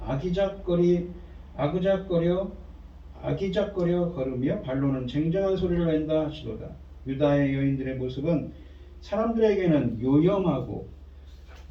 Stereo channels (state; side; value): identical; both; correlation 1.00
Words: 아기작거려 걸으며 발로는 쟁쟁한 소리를 낸다 하시도다. 유다의 여인들의 모습은 사람들에게는 요염하게